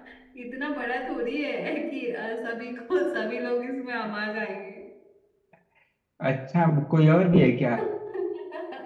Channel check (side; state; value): both; identical; correlation 1.00